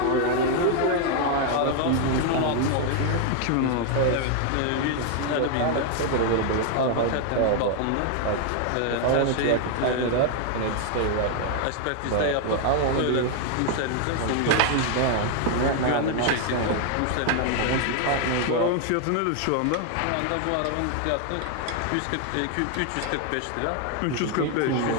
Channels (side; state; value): both; different; correlation 0.00